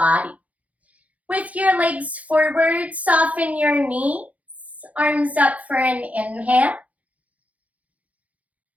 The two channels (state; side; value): late; left; 0.069 ms